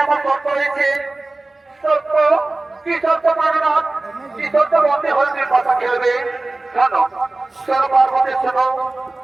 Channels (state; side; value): quieter; left; 3.0 dB